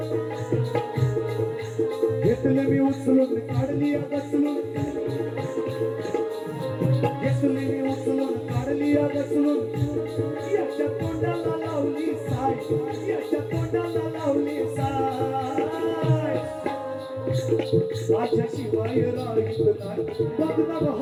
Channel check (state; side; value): identical; both; correlation 1.00